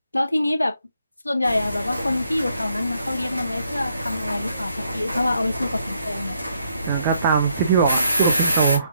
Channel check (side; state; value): both; inverted; correlation -0.75